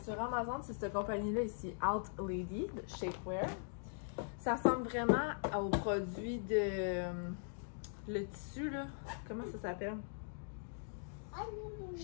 sur Amazon, c'est cette compagnie-là ici, Out Lady, de Shapewear. Ça ressemble vraiment aux produits de... le tissu, là, comment ça s'appelle?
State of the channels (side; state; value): right; silent; digital silence